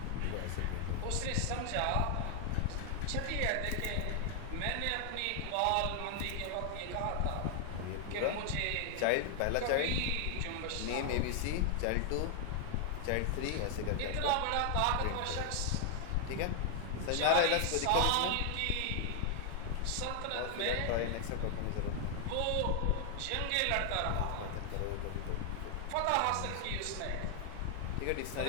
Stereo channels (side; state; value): both; different; correlation 0.00